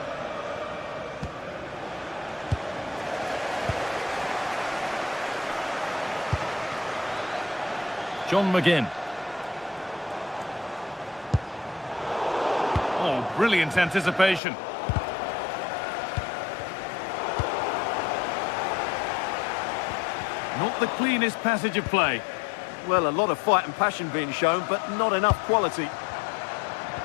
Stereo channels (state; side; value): drops out; right; at 14.4 s